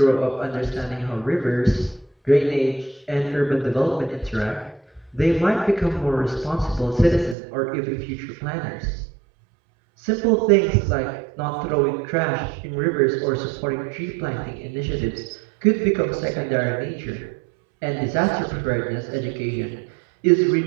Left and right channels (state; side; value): drops out; left; at 7.4 s